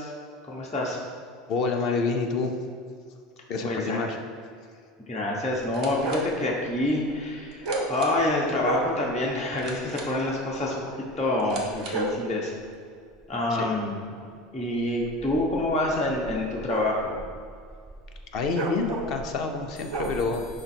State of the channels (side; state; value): both; normal; correlation 0.33